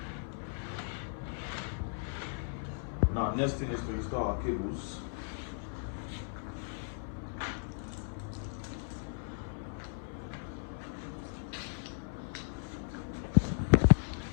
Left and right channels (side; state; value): right; silent; 54 dB below the other